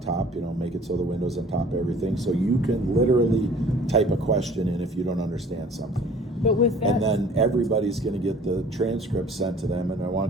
top, you know, make it so the window's on top of everything. So you can literally type a question in if you don't understand something. But with that, and then everybody's going to get the transcript sent to them, and I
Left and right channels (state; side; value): normal; both; correlation 0.50